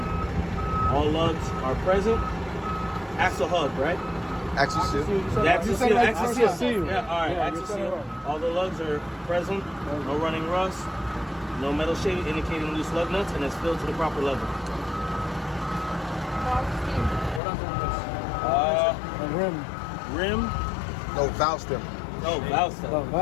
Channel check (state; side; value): drops out; right; at 17.4 s